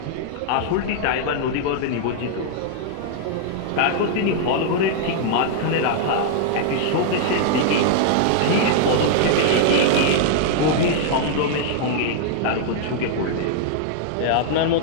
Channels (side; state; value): both; different; correlation -0.01